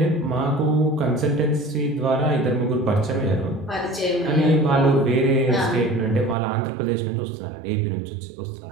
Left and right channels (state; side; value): drops out; left; at 6.4 s